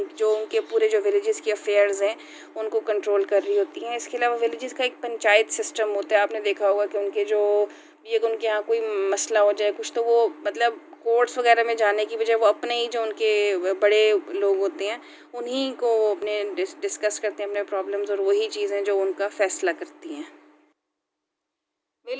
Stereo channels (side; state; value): both; identical; correlation 1.00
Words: पूरे जो विलेजेस के अफेयर्स हैं उनको कंट्रोल कर रही होती हैं। इसके अलावा विलेजेस का एक पंचायत सिस्टम होता है। आपने देखा होगा कि उनके यहाँ कोई मसला हो जाए कुछ, तो वो मतलब कोर्ट्स वगैरह में जाने की बजाय वो अपने ही जो उनके बड़े लोग होते हैं उन्हीं को अपने डिस्कस करते हैं अपने प्रॉब्लम्स और वही चीज़ें जो उनका फैसला करती हैं।